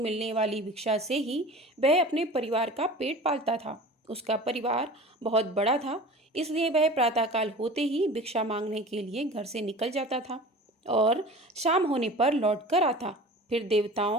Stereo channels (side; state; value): both; normal; correlation 0.38